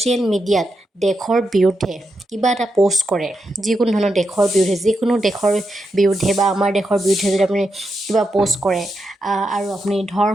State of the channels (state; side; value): normal; both; correlation 0.86